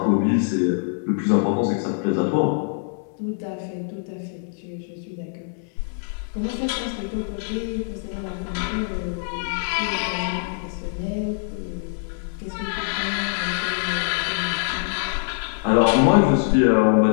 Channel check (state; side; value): silent; right; 63 dB below the other